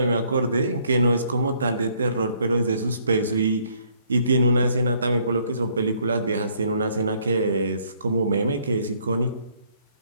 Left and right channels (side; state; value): both; inverted; correlation -0.65